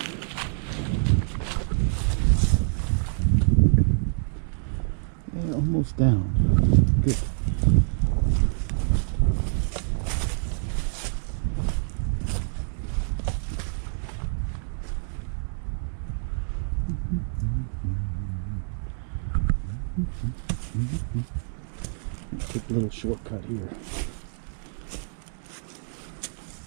Yeah, almost down. Good. Take a little shortcut here.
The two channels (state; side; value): silent; left; digital silence